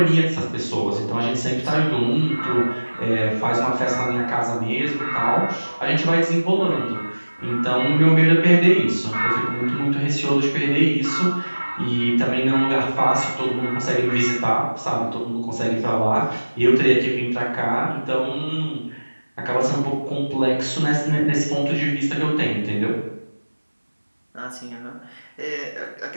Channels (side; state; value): both; inverted; correlation -1.00